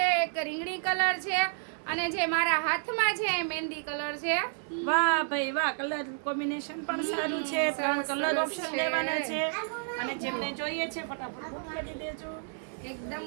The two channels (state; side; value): silent; left; 57 dB below the other